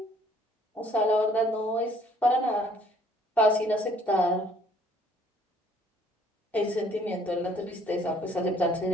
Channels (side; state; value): both; normal; correlation 0.60